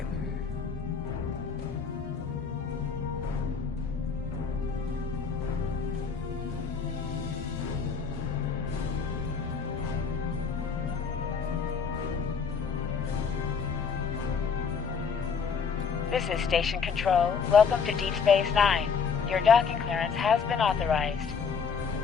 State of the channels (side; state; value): right; quieter; 5.9 dB